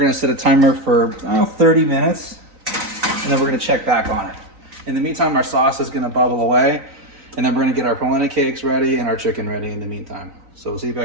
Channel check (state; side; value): late; left; 3.9 ms